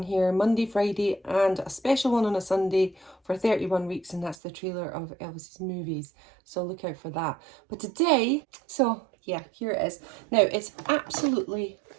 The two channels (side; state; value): left; drops out; at 4.4 s